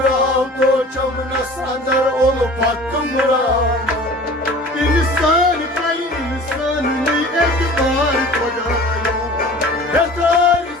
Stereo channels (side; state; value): both; normal; correlation 0.43